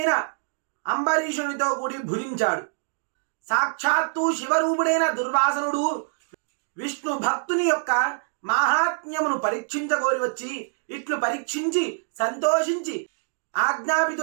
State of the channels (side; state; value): left; silent; digital silence